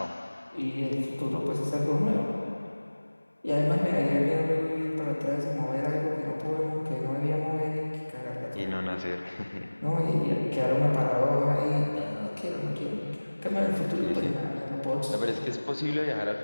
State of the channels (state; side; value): inverted; both; correlation -1.00